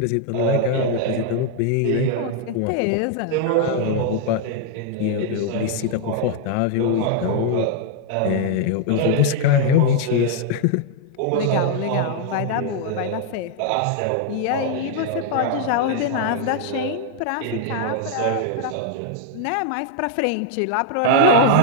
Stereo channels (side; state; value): both; different; correlation 0.00